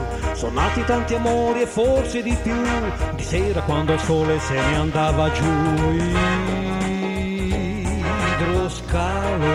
Sono nati tanti amori e forse di più, di sera quando il sole se ne andava giù.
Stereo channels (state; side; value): identical; both; correlation 1.00